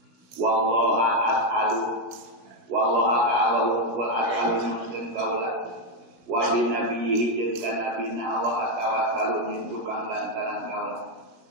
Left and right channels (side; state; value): left; late; 17 ms